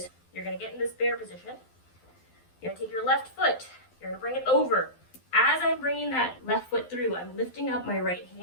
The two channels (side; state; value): right; late; 12 ms